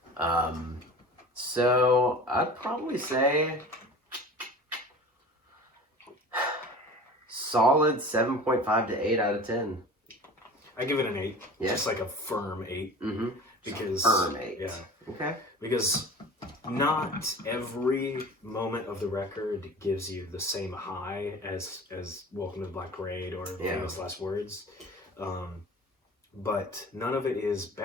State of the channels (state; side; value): normal; both; correlation 0.39